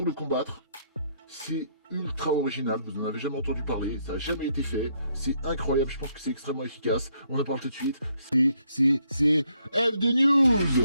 le combattre. C'est ultra original, vous n'en avez jamais entendu parler, ça n'a jamais été fait, c'est incroyable, je pense que c'est extrêmement efficace, on en parle tout de suite, c'est F de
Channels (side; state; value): both; inverted; correlation -0.72